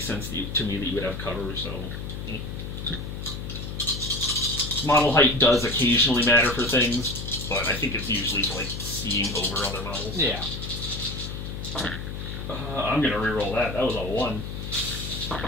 sense to me that you would have cover, so... Model height does occasionally matter for things, but I think it's usually for, like, seeing over other models. Yeah. I'm gonna reroll that. That was a 1.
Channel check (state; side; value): noise; left; hum, 7 dB below the sound